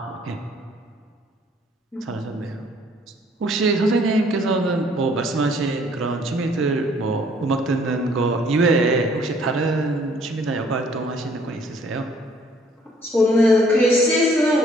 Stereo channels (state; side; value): normal; both; correlation 0.60